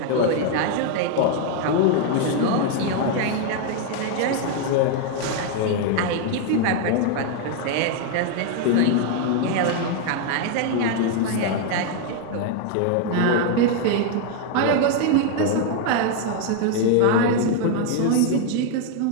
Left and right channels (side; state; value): both; different; correlation 0.00